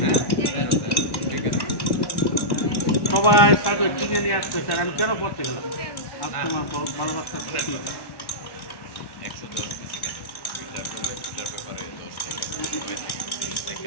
সবাই তাদের কিনে নিয়ে আসতে স্যার, আমি কেন পড়তে গেলাম, আজ তোমার ভালোবাসার ক্ষতি।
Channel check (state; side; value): late; right; 1.1 ms